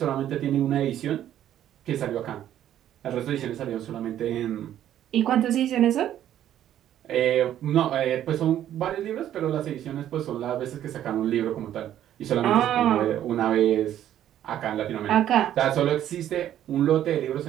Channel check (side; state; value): left; quieter; 11.4 dB